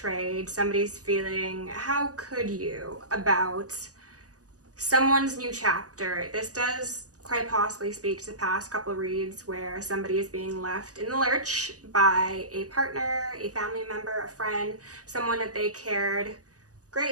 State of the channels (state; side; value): late; left; 0.67 ms